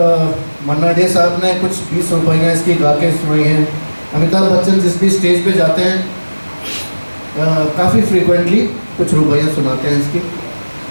मन्ना डे साहब ने कुछ 20 रुपये इसकी गा के सुनाई हैं। अमिताभ बच्चन जिस भी स्टेज पे जाते हैं काफ़ी फ्रीक्वेंटली कुछ रुपये सुनाते हैं इसकी।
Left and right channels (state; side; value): inverted; both; correlation -1.00